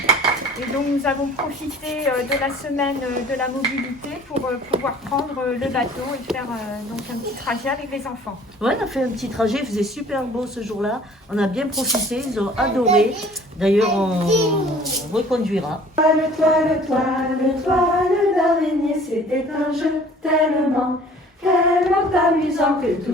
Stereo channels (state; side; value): normal; both; correlation 0.51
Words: Et donc nous avons profité de la semaine de la mobilité pour pouvoir prendre le bateau et faire donc un petit trajet avec les enfants. Ouais, on a fait un petit trajet, il faisait super beau ce jour-là. On a bien profité, ils ont adoré. D'ailleurs, on reconduira. Toile d'araignée, c'était un jeu tellement amusant que